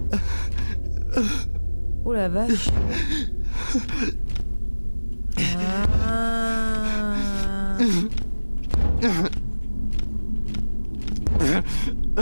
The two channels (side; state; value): both; inverted; correlation -1.00